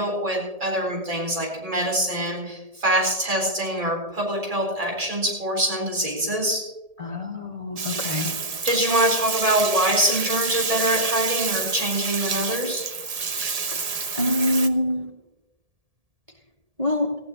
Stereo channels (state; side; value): late; left; 1.7 ms